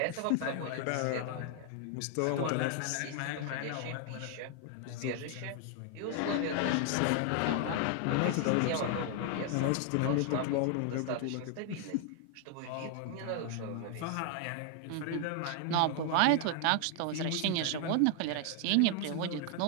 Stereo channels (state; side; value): different; both; correlation 0.00